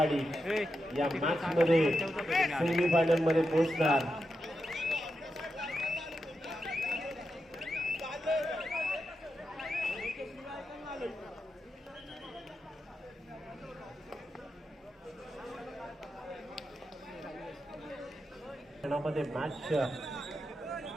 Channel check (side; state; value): both; normal; correlation 0.87